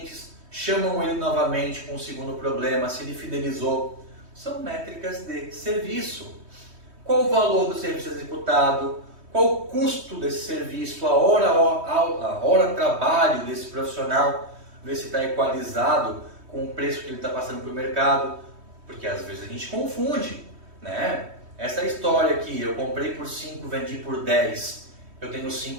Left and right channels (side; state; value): left; late; 3.2 ms